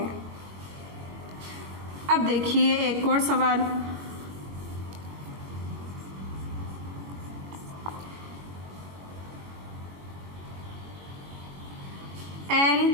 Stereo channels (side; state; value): left; late; 22 ms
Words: अब देखिए एक और सवाल।